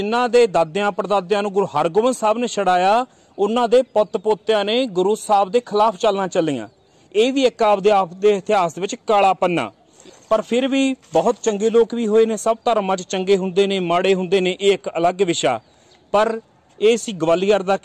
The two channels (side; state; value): both; identical; correlation 1.00